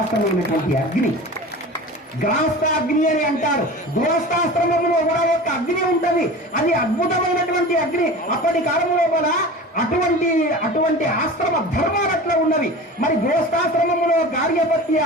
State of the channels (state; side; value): normal; both; correlation 0.35